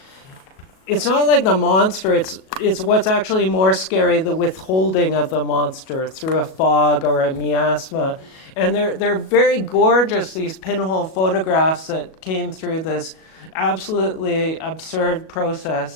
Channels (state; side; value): late; right; 37 ms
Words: it's not like the monster, it's what's actually more scary, the withholding of the monster through a fog or a miasma. And they're very gorgeous, these pinhole photographs that came through this absolutely absurd